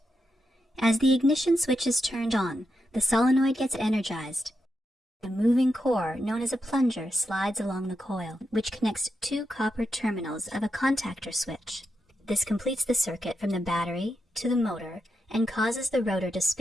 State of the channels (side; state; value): both; normal; correlation 0.85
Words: As the ignition switch is turned on, the solenoid gets energized. A moving core, known as a plunger, slides along the coil, which connects two copper terminals of a contactor switch. This completes the circuit from the battery to the motor and causes the rotor to